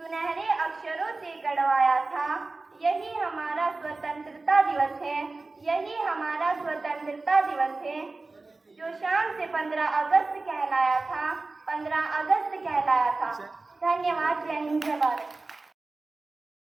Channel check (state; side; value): quieter; left; 3.5 dB